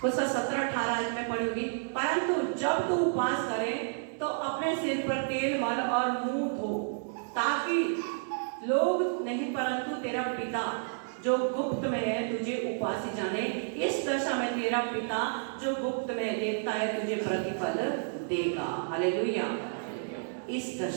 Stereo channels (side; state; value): left; silent; digital silence